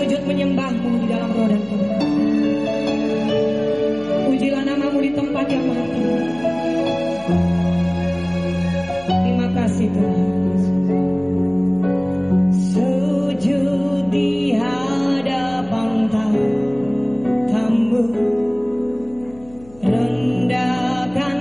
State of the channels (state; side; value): noise; left; hum, 24 dB below the sound